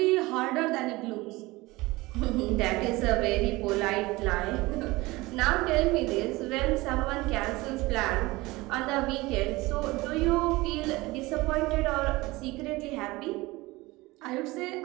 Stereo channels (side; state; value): left; quieter; 21.1 dB